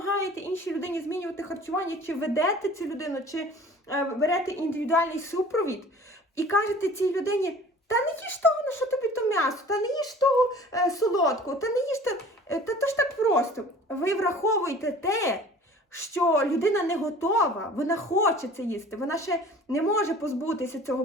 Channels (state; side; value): normal; both; correlation 0.46